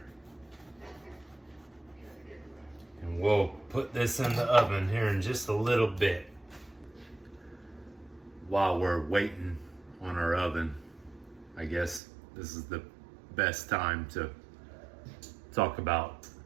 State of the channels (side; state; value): left; drops out; at 12.0 s